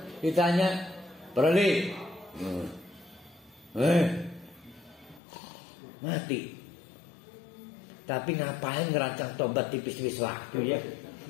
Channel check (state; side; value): drops out; right; at 5.2 s